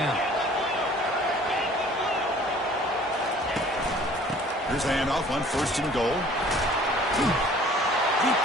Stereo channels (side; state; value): both; normal; correlation 0.52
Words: Here's the handoff on 1st and goal. He